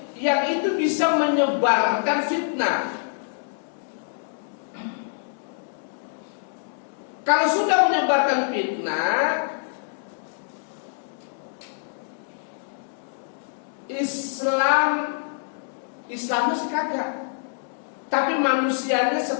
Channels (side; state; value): right; silent; digital silence